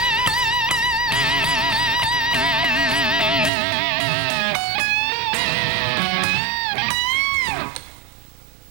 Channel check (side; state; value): left; drops out; at 3.5 s